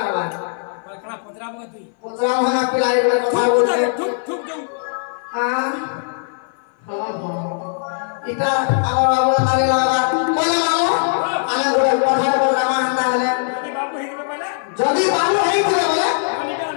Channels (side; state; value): right; silent; 60 dB below the other